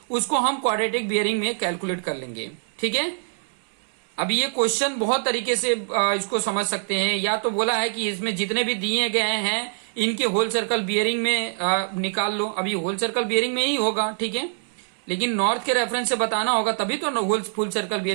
उसको हम क्वाड्रेटिक बियरिंग में कैलकुलेट कर लेंगे। ठीक है, अब ये क्वेश्चन बहुत तरीके से इसको समझ सकते हैं। या तो बोला है कि इसमें जितने भी दिए गए हैं इनके होल सर्कल बियरिंग में निकाल लो, अभी होल सर्कल बियरिंग में ही होगा। ठीक है, लेकिन नॉर्थ के रेफरेंस से बताना होगा तभी तो होल फुल सर्कल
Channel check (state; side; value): silent; left; digital silence